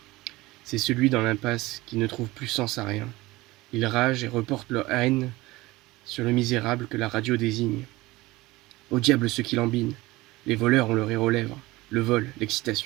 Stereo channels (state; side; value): quieter; left; 20.0 dB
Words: C'est celui dans l'impasse qui ne trouve plus sens à rien. Ils ragent et reportent leur haine sur le misérable que la radio désigne. Au diable ceux qui lambinent. Les voleurs ont le rire aux lèvres. Le vol,